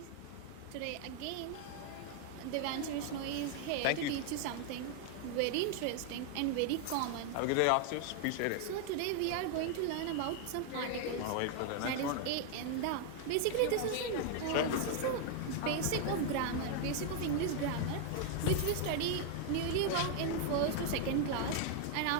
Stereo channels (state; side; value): different; both; correlation 0.00